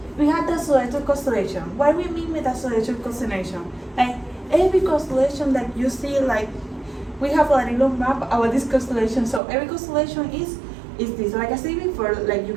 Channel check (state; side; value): drops out; left; at 9.4 s